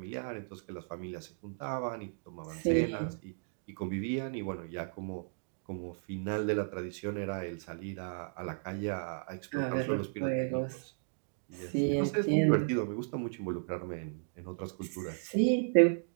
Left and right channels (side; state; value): left; silent; digital silence